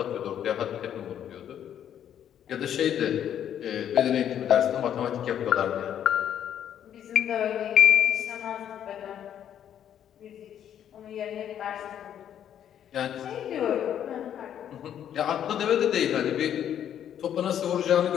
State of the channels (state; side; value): quieter; right; 9.9 dB